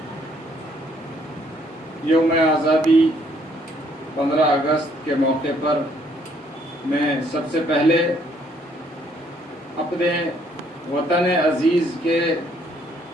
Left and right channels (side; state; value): both; normal; correlation 0.66